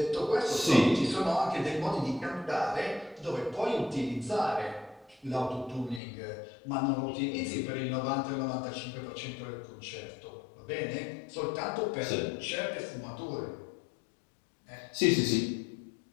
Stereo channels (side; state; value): right; drops out; at 6.0 s